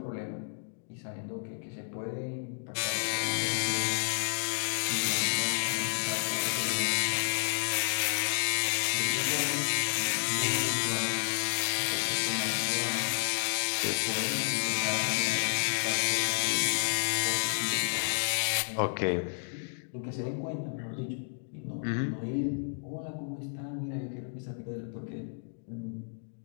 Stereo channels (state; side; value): silent; right; digital silence